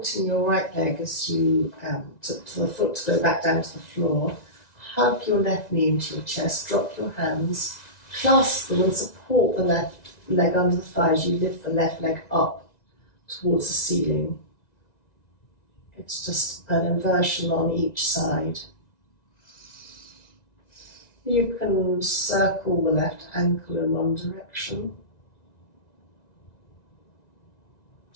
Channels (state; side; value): late; right; 1.9 ms